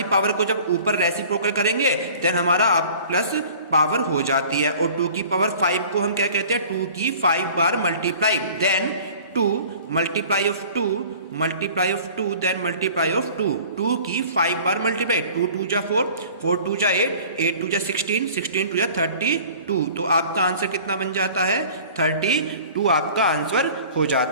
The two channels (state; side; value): inverted; both; correlation -0.46